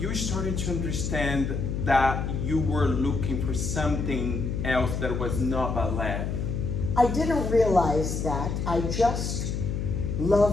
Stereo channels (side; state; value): left; noise; hum, 2 dB below the sound